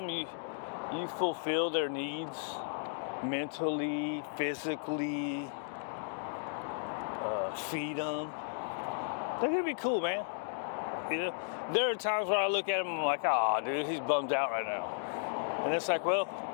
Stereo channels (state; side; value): silent; right; digital silence